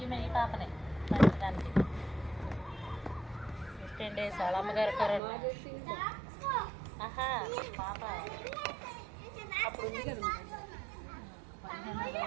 ఈమె ఈ పాపనే పంచడానికి 15 days వాళ్ళ అమ్మగారు కరోనా. ఆహా పాప అప్పుడు ఉంది కదా 15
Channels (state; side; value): drops out; left; at 5.2 s